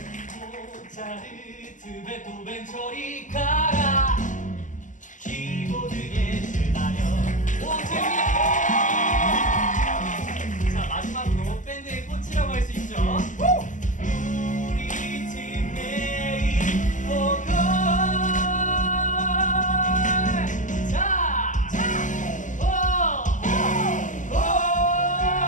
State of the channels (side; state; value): right; late; 0.37 ms